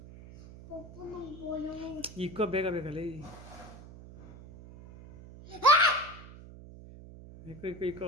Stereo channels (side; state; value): right; noise; hum, 17 dB below the sound